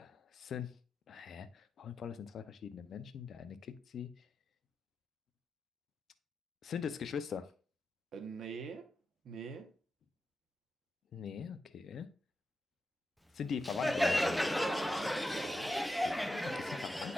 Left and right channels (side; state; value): both; normal; correlation 0.89